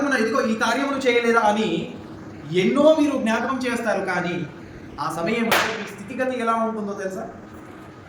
ఇదిగో ఈ కార్యములు చేయలేదా అని ఎన్నో మీరు జ్ఞాపకం చేస్తారు. కానీ ఆ సమయంలో మీ స్థితిగతి ఎలా ఉంటుందో తెలుసా?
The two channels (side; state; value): both; identical; correlation 1.00